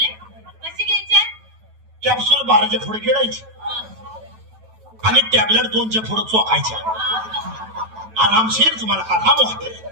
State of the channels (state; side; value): late; left; 9.2 ms